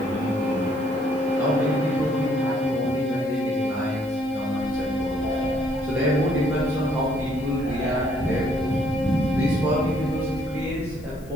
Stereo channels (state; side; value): noise; left; hiss, 26 dB below the sound